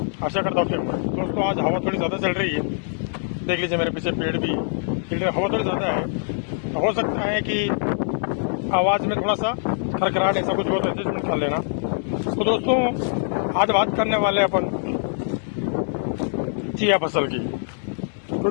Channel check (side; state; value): right; silent; digital silence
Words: आशा करता हूँ कि दोस्तों आज हवा थोड़ी ज़्यादा चल रही है। देख लीजिए मेरे पीछे पेड़ भी है, हवा थोड़ी ज़्यादा है। तो हो सकता है कि आवाज़ में थोड़ा सा खरखराहट ऐसा कुछ हो तो एडजस्टमेंट कर लेना। तो दोस्तों आज बात करने वाले अपन चिया फसल की,